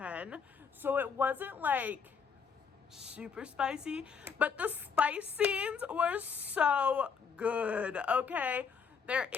So it wasn't like super spicy, but the spice scenes were so good, okay? There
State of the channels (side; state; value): right; quieter; 6.1 dB